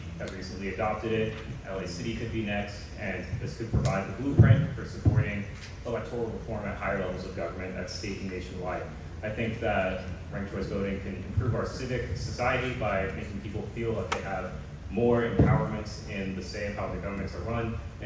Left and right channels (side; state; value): both; identical; correlation 1.00